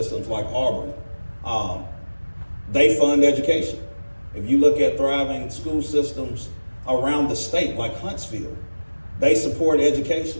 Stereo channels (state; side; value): inverted; both; correlation -1.00